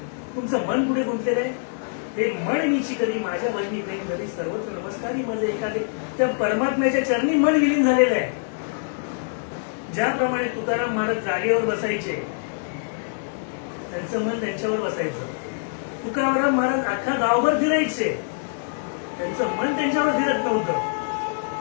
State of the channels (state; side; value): silent; right; digital silence